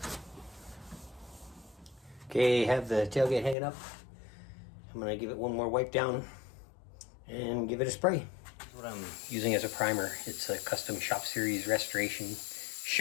Okay, have the tailgate hanging up. I'm gonna give it one more wipe down and give it a spray. What I'm using as a primer, it's a Custom Shop Series Restoration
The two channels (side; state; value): right; drops out; at 3.6 s